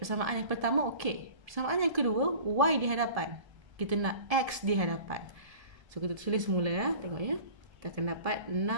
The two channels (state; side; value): late; left; 1.7 ms